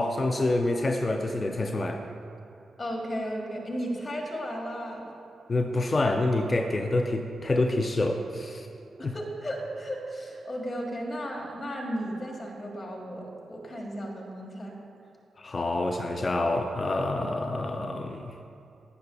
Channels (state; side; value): normal; both; correlation 0.91